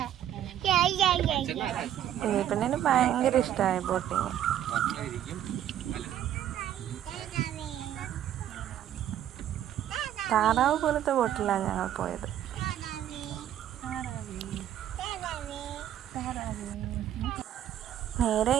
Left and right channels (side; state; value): left; quieter; 11.1 dB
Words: കുഞ്ഞിപ്പെണ്ണിന് ഭയങ്കര ഇഷ്ടമായി ബോട്ടിങ്. താറാവ് പോലത്തെ ബോട്ടിലാണ് ഞങ്ങൾ പോയത്. നേരെ